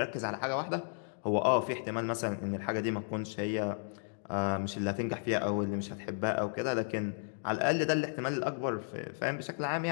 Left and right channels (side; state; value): right; silent; digital silence